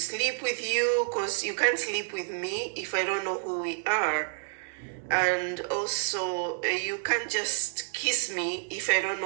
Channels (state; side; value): silent; left; digital silence